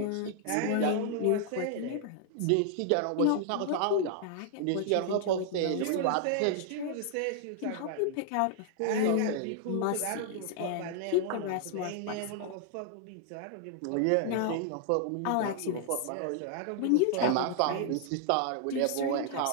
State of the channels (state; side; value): different; both; correlation 0.00